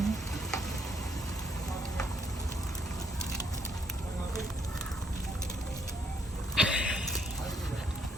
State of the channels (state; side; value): normal; both; correlation 0.71